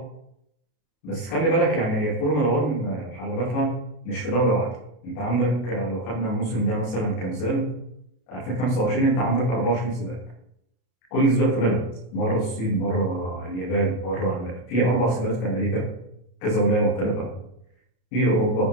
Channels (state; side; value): late; right; 33 ms